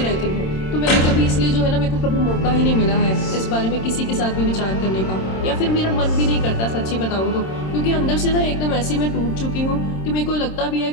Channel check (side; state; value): right; late; 26 ms